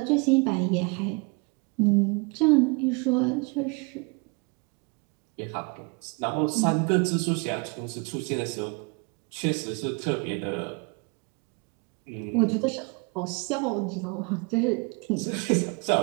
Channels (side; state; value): left; quieter; 31.6 dB